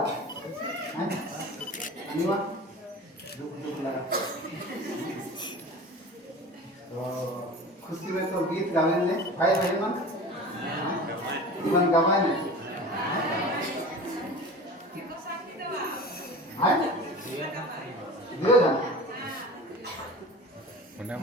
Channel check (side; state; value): both; normal; correlation 0.36